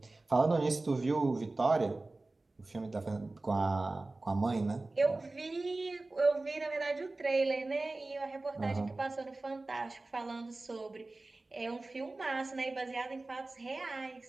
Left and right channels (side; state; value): left; quieter; 3.1 dB